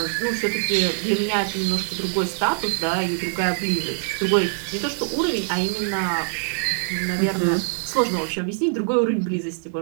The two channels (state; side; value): silent; left; digital silence